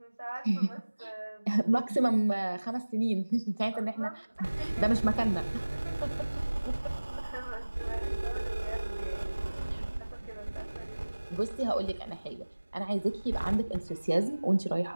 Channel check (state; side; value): inverted; both; correlation -1.00